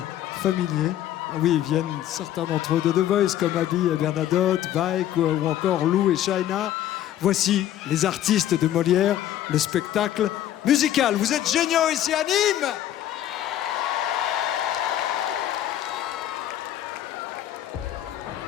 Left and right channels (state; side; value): quieter; right; 12.0 dB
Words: familiers. Oui, ils viennent certains d'entre eux de The Voice, comme Abby et Bernadotte, Vaik ou encore Lou et Shaina. Voici les artistes de Molière, le spectacle musical. Vous êtes géniaux ici à Nîmes!